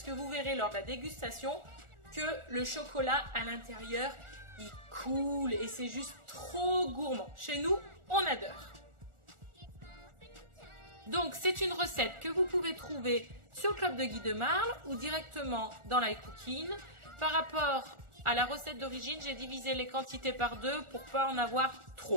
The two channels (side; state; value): left; late; 1.4 ms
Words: que vous verrez lors de la dégustation que le chocolat à l'intérieur, il coule et c'est juste trop gourmand. Chez nous, on adore. Donc, c'est une recette que vous pouvez trouver sur le Club de Guy de Marle ou directement dans l'iCooking. Par rapport à la recette d'origine, j'ai divisé les quantités par deux pour pas en avoir